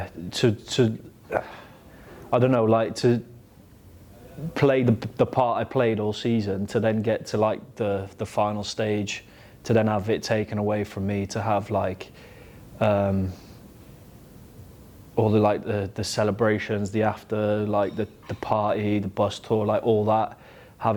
I don't know, to play the part I played all season, to then get to the final stage, to then have it taken away from me, to have all the celebrations, the after, the party, the bus tour, all that,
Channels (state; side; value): identical; both; correlation 1.00